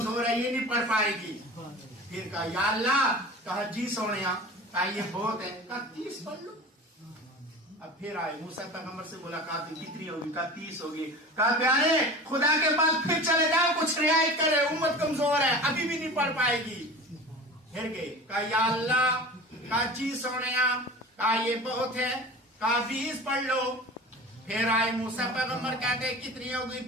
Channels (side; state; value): both; normal; correlation 0.36